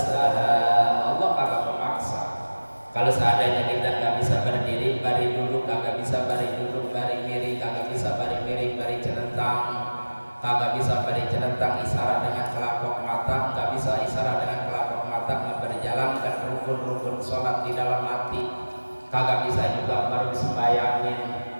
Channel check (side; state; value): both; inverted; correlation -1.00